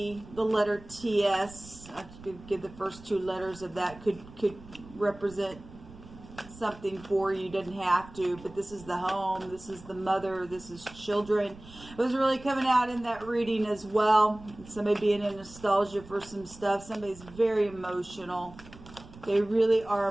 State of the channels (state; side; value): noise; right; rumble, 19 dB below the sound